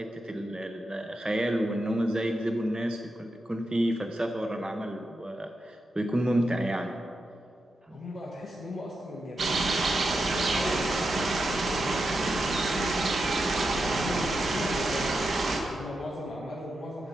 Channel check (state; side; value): normal; both; correlation 0.88